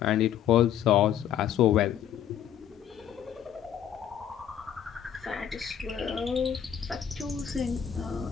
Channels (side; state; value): right; quieter; 9.6 dB